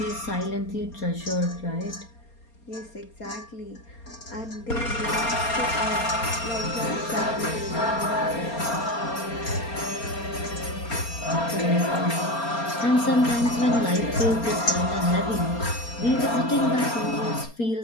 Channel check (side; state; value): right; late; 4.3 ms